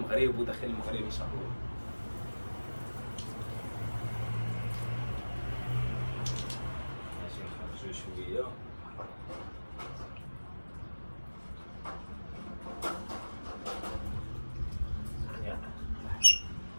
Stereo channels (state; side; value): inverted; both; correlation -1.00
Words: وداخل المغرب ان شاء الله. ماشي نخرجوا شويه.